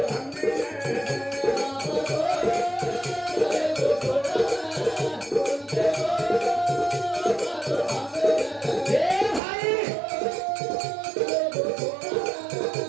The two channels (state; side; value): drops out; left; at 9.4 s